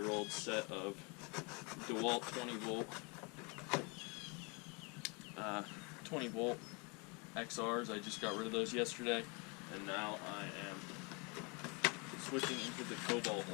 set of DeWalt 20-volt XRs. I just got rid of those yesterday, and now I am switching into the Cobalt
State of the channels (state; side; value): quieter; right; 31.0 dB